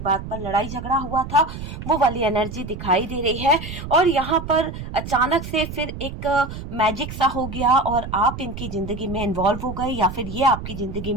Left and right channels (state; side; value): noise; right; rumble, 9 dB below the sound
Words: बात पर लड़ाई झगड़ा हुआ था। वो वाली एनर्जी दिखाई दे रही है। और यहाँ पर अचानक से फिर एक मैजिक सा हो गया और आप इनकी जिंदगी में इन्वॉल्व हो गए, या फिर ये आपकी जिंदगी